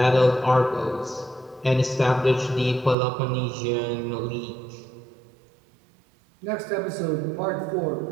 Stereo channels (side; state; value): left; drops out; at 3.0 s